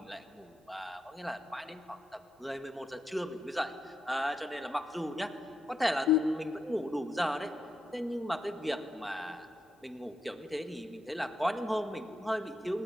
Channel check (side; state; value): both; normal; correlation 0.84